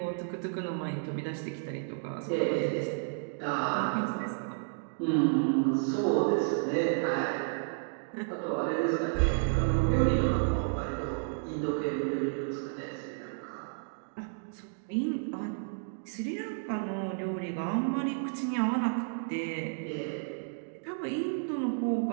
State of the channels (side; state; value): left; silent; digital silence